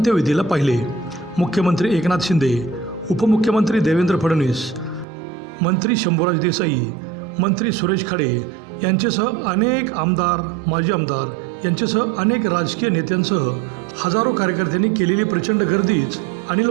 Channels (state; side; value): drops out; left; at 5.1 s